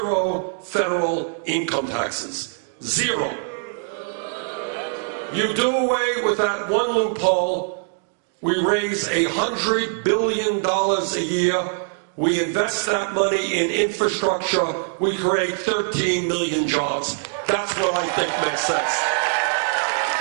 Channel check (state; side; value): silent; left; digital silence